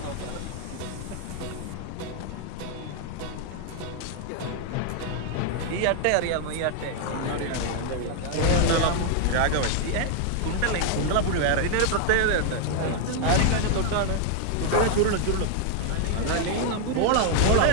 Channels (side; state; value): both; different; correlation 0.00